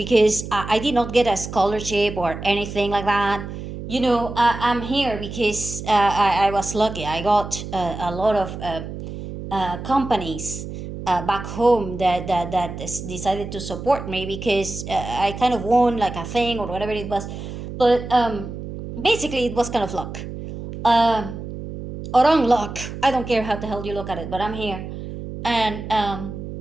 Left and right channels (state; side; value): noise; right; hum, 9 dB below the sound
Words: I did not get a scholarship or anything like that. I'm here because I was lucky. I got a lot of companies back home that decided to support me because I kind of won like a thing or whatever it was. But basically, it was kind of luck. Um, or unluck. I don't care how the hell you look at it, but I'm here. And,